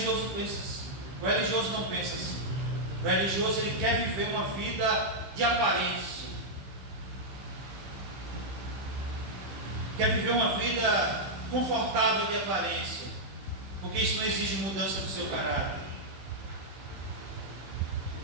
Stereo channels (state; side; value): late; left; 15 ms